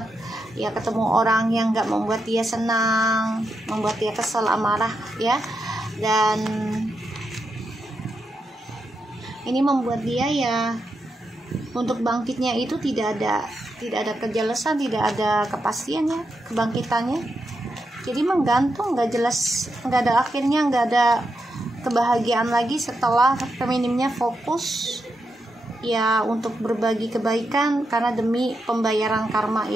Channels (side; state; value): both; normal; correlation 0.85